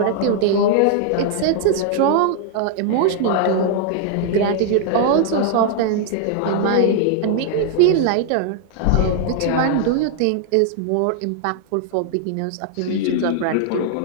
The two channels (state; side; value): different; both; correlation 0.00